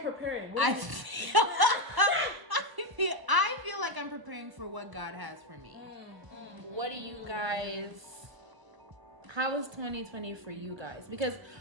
I feel like I'm preparing for what God has for me. What do you guys... How was 2020 for you guys? Because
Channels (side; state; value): left; late; 1.0 ms